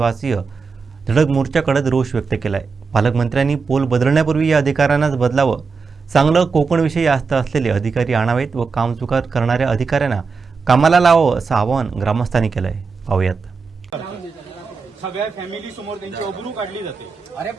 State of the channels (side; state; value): left; quieter; 5.0 dB